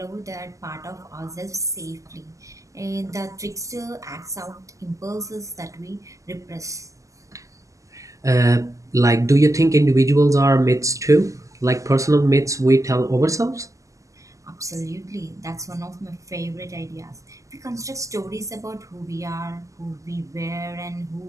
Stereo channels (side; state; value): left; late; 0.16 ms